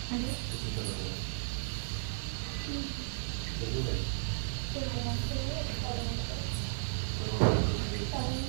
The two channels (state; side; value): silent; left; digital silence